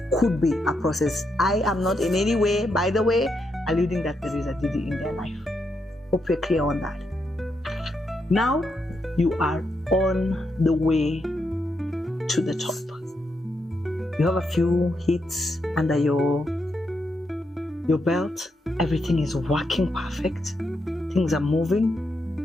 could be a process. I am not in any way, by the way, alluding that there is a Diddy in their life. Hope you're clear on that. Now you are on the way to the top. You have a few hits under your belt. Everything is working perfect. Things are moving.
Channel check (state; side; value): normal; both; correlation 0.82